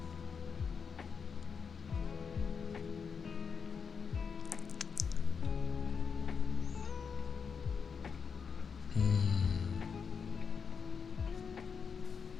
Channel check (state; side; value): quieter; right; 6.1 dB